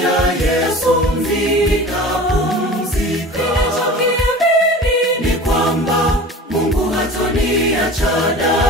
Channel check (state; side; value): normal; both; correlation 0.38